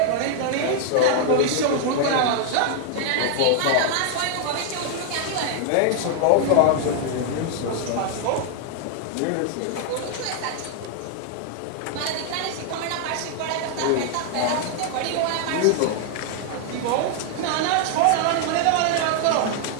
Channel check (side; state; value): both; different; correlation 0.00